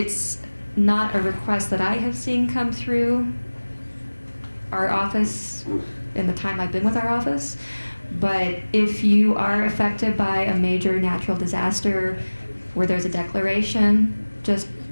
not a request that I have seen come through our office in the time I've been with our office, but if you are affected by a major natural disaster where there's a declaration, just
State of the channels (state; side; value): inverted; both; correlation -1.00